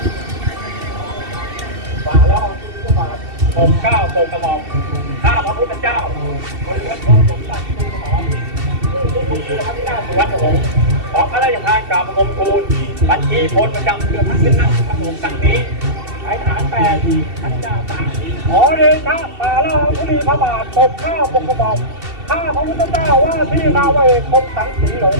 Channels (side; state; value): left; late; 2.7 ms